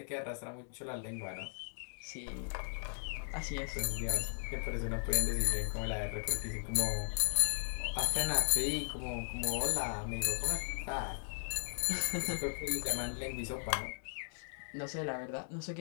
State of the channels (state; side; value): silent; right; digital silence